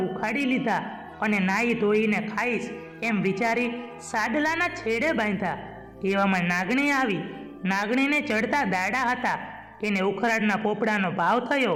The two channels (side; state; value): both; identical; correlation 1.00